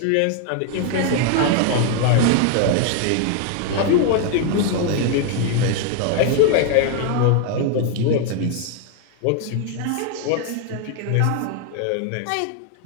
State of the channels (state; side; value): different; both; correlation 0.00